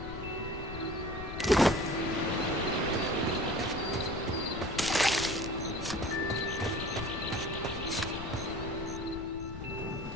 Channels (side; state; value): left; noise; rumble, 9 dB below the sound